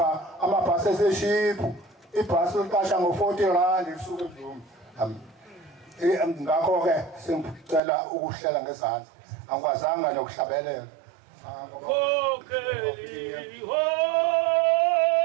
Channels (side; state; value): left; drops out; at 7.8 s